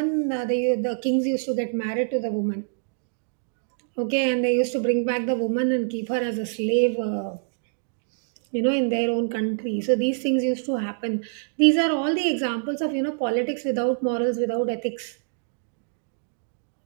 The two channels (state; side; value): silent; left; digital silence